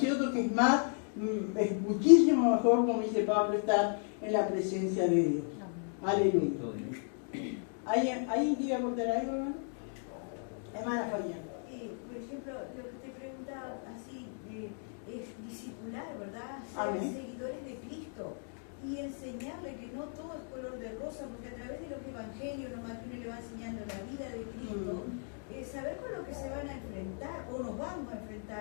que es muchísimo mejor, como dice Pablo, estar en la presencia de Dios. Aleluya. ¿Alguien quiere aportar algo, hermano? Hermana Fabián. Por ejemplo, lo que te preguntaba así, es discipular, ¿verdad? Ser Amén. Seguidores de Cristo y enseñarle que no todo es color de rosa, porque a través de los evangelios nomás que uno le va enseñando la vida de Cristo, saber con lo que se van a enfrentar o nos vamos a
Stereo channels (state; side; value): silent; right; 55 dB below the other